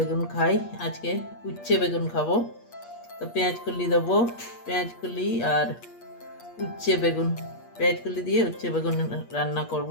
খাই, আজকে উচ্ছে বেগুন খাবো। তো পেঁয়াজ কলি দেবো, পেঁয়াজ কলি আর উচ্ছে বেগুন, পেঁয়াজ কলি দিয়ে উচ্ছে বেগুন রান্না করব,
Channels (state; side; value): late; right; 8.5 ms